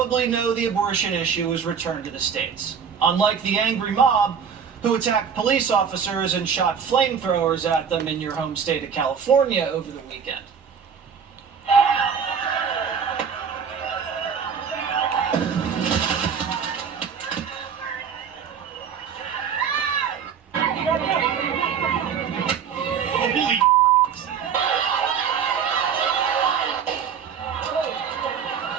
know the abortion issue is returned to the states. Unlike the angry mob who attacked police officers and shot flamethrowers at them in your home state of California over the weekend.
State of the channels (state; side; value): quieter; left; 7.1 dB